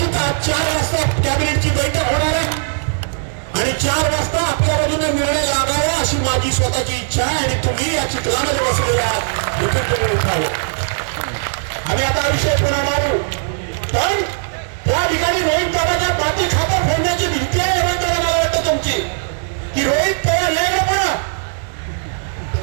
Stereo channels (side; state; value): left; silent; digital silence